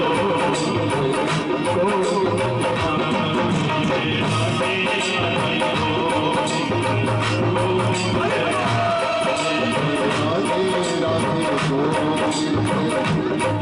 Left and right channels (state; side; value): noise; right; hum, 29 dB below the sound